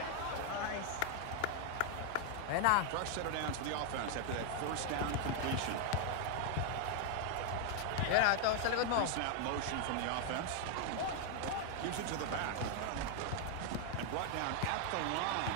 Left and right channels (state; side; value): different; both; correlation 0.00